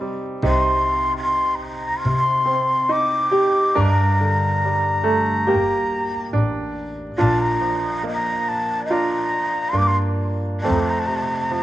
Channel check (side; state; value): both; normal; correlation 0.92